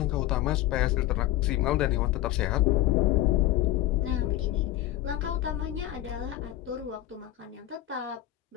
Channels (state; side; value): quieter; right; 14.0 dB